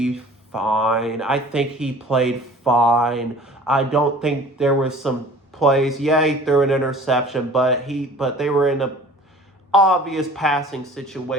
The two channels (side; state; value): both; normal; correlation 0.46